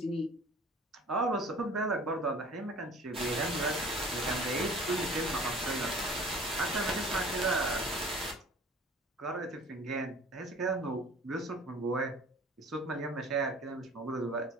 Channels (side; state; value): both; normal; correlation 0.47